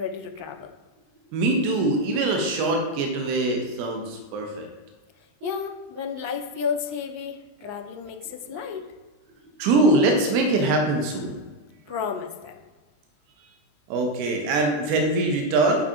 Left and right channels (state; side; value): late; left; 21 ms